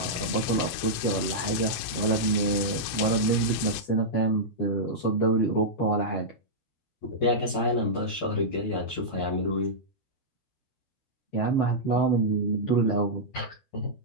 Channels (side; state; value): right; late; 12 ms